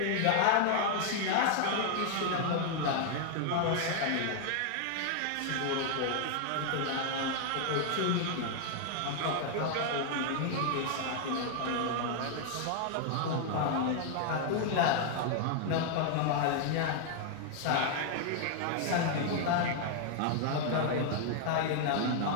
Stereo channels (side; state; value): both; different; correlation 0.00